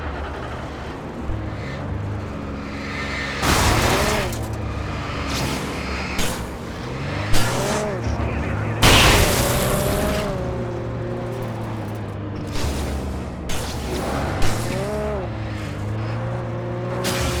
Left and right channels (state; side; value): identical; both; correlation 1.00